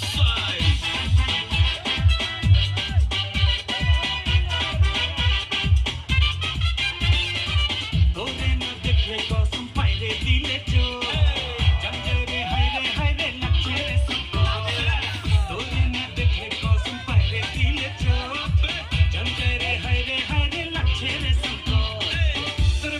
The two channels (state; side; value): identical; both; correlation 1.00